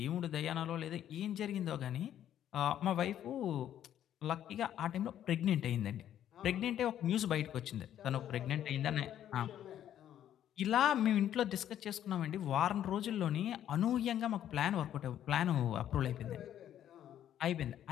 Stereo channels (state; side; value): quieter; right; 10.9 dB